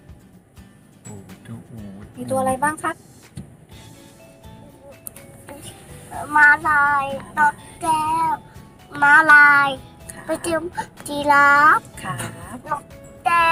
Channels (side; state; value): both; identical; correlation 1.00